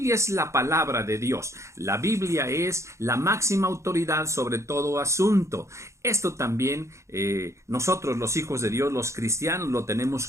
es la palabra de Dios, la Biblia es la máxima autoridad sobre todo asunto. Esto también nosotros los hijos de Dios, los cristianos, lo tenemos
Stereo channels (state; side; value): late; left; 0.14 ms